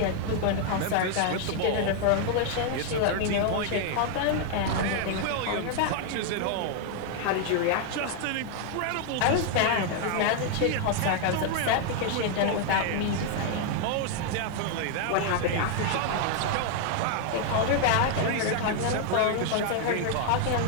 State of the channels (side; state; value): both; different; correlation 0.00